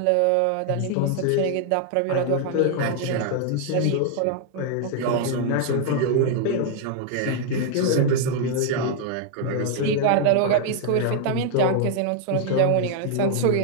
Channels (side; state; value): both; different; correlation 0.00